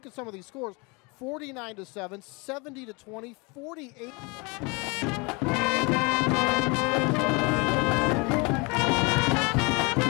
at some of these scores, 49-7, 70-20, 48.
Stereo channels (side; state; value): right; quieter; 28.9 dB